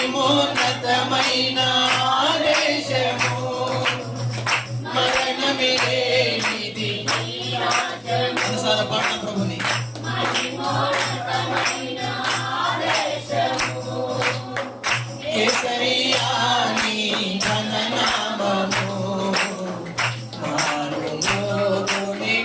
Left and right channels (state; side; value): identical; both; correlation 1.00